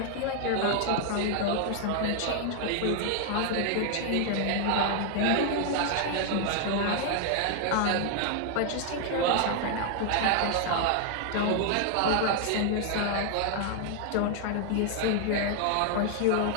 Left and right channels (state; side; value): different; both; correlation 0.00